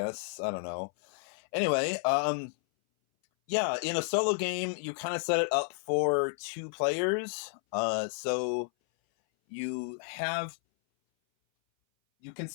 I don't know. Anyway, yeah, in a solo game, you kind of set it up for two players. So you have you can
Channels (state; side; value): silent; right; 57 dB below the other